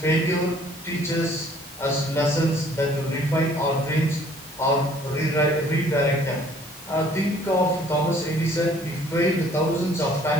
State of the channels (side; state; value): both; normal; correlation 0.57